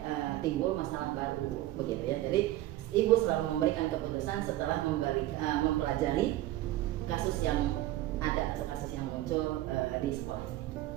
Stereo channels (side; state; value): left; quieter; 15.3 dB